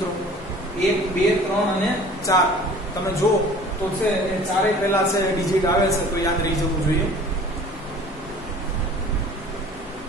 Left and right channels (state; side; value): normal; both; correlation 0.47